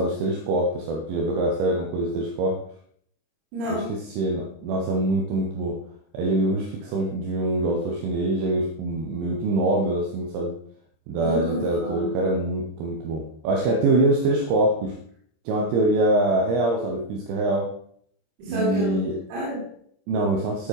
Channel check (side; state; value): left; late; 26 ms